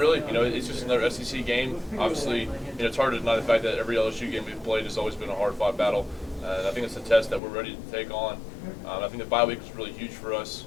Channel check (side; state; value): right; drops out; at 7.4 s